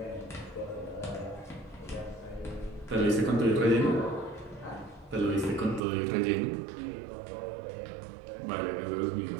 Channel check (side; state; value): left; drops out; at 5.8 s